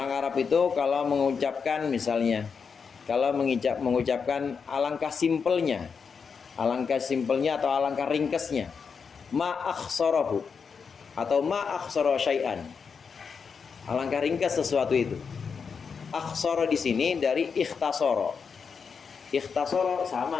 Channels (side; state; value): right; quieter; 5.9 dB